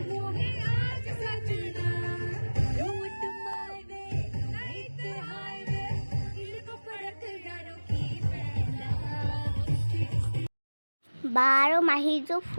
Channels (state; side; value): inverted; both; correlation -1.00